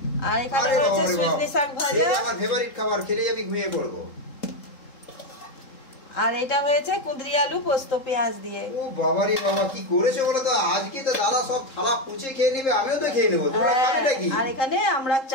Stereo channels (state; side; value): late; right; 3.7 ms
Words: আর এখানে রয়েছে সজনে শাক ভাজা। আমার ফেভারিট খাবার, খেলেই আমি ঘুমিয়ে পড়বো। আর এটা হয়েছে কুঁদরি আলু পোস্ত পেঁয়াজ দিয়ে। ও বাবা রে বাবা, কি করেছো বলো তো? আজকে তো দাদা সব থালা পুছে খেয়ে নেবে, আমিও তো খেয়ে নেবো। তোমরা খাবে নাকি? আর এখানে আমরা